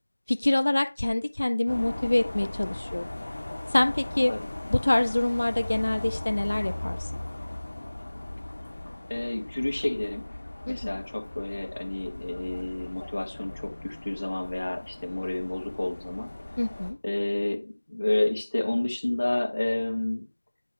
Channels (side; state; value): both; inverted; correlation -1.00